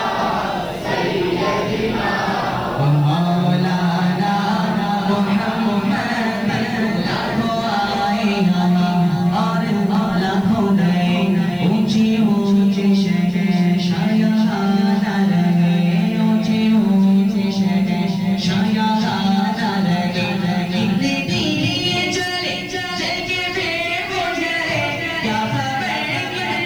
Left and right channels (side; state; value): left; noise; hiss, 28 dB below the sound